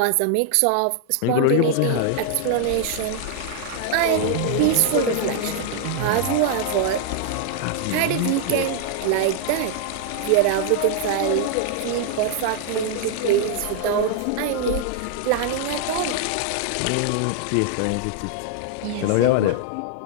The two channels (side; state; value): both; different; correlation 0.00